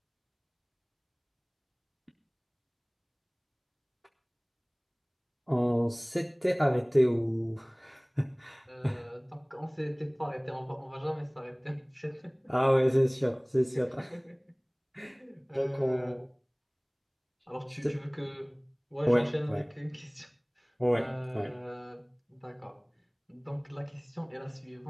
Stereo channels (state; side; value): identical; both; correlation 1.00